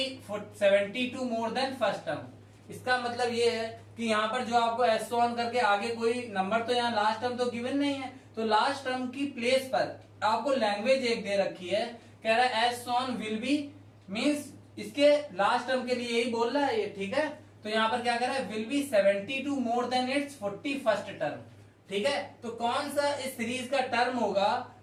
72 more than first term. इसका मतलब ये है कि यहाँ पर जो आपको एस ऑन करके आगे कोई नंबर, तो यहाँ लास्ट टर्म तो गिवन नहीं है, तो लास्ट टर्म की प्लेस पर आपको लैंग्वेज एक दे रखी है, कह रहा है S on will be, means इसके लास्ट टर्म के लिए यही बोल रहा है ये, ठीक है। तो यहाँ पर क्या कह रहा है, will be 72 more than it's 41st term, ठीक है। तो कौन सा इस सीरीज का टर्म होगा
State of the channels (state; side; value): identical; both; correlation 1.00